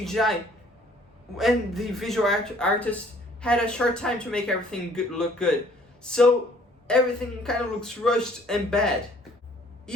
and the visual artist had a short time to make everything look good. So everything kind of looks rushed and bad.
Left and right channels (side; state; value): both; normal; correlation 0.58